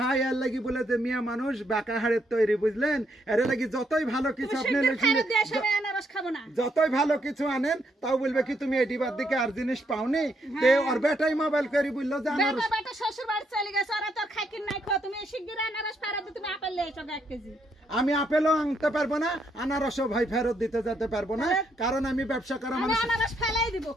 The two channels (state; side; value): normal; both; correlation 0.75